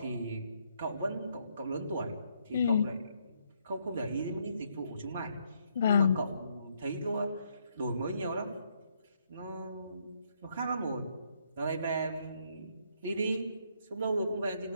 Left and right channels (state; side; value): inverted; both; correlation -0.73